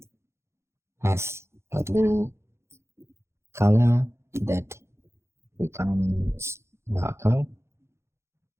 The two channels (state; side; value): late; left; 0.13 ms